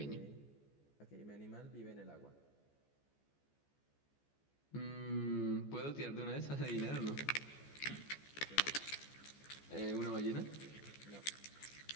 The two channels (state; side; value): late; right; 14 ms